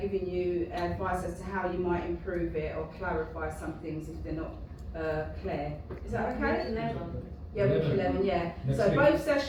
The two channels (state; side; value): identical; both; correlation 1.00